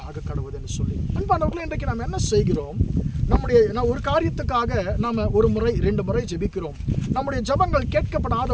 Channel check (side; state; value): both; identical; correlation 1.00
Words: ஆக கடவுது என்று சொல்லி. அன்பானவர்களே, இன்றைக்கு நாம் என்ன செய்கிறோம்? நான் ஒரு காரியத்துக்காக நாம் 1 முறை 2 முறை ஜெபிக்கிறோம். நம்முடைய ஜெபங்கள்